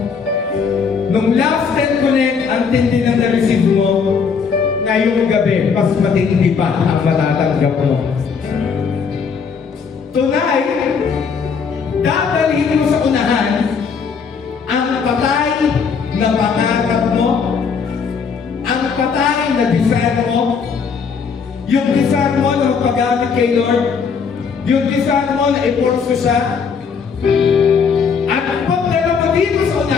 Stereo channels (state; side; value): quieter; right; 5.9 dB